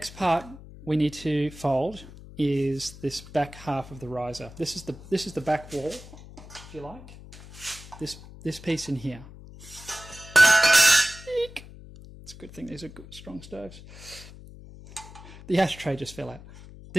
part we need to fold is this back half of the riser. This is the back wall, if you like. This piece in here. Eek. It's a good thing these are good, strong stoves. The ashtray just fell out.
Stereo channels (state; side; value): noise; left; hum, 17 dB below the sound